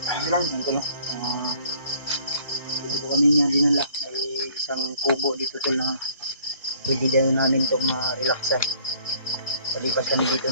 Bilang Ito no. Ito kami niya dinala. May isang kubo dito tol na pwede din namin itong relaxan. Palipas kami dito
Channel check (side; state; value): both; inverted; correlation -0.58